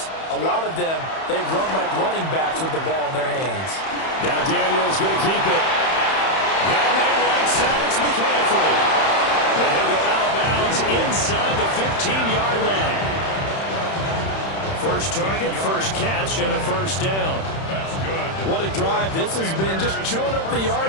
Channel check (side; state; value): right; late; 31 ms